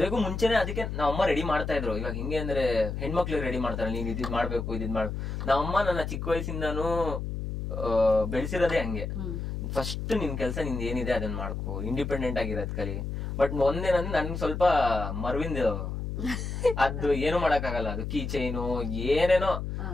ಮುಂಚೆನೆ ಅದಕ್ಕೆ ನಾವಮ್ಮ ರೆಡಿ ಮಾಡ್ತಾ ಇದ್ರು. ಇವಾಗ ಹಿಂಗೆ ಅಂದ್ರೆ ಹೆಣ್ಮಕ್ಳಿಗೆ ರೆಡಿ ಮಾಡ್ತಾರೆ, ನೀನ್ ಇದ್ ಮಾಡ್ಬೇಕು ಇದ್ ಮಾಡು. ನಾವಮ್ಮ ನನ್ನ ಚಿಕ್ಕ ವಯಸ್ಸಿಂದಾನು ಬೆಳೆಸಿರೋದೇ ಹಂಗೆ. ಫಸ್ಟ್ ನಿನ್ ಕೆಲ್ಸ ನಿಂದ ಏನಿದೆ ಅದನ್ನ ಮಾಡ್ಕೋ, ಇಂಡಿಪೆಂಡೆಂಟ್ ಆಗಿರೋದ್ ಕಲಿ. ಬಟ್ ಒಂದೇನಂದ್ರೆ ನನ್ಗೆ ಸ್ವಲ್ಪ ಮರ್ವಿಂದ ಅದು ಏನು ಮಾಡಕ್ ಆಗಲ್ಲ. ಅದು ಕೀ ಚೈನು ಏನೇನೋ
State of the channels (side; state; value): left; noise; hum, 4 dB below the sound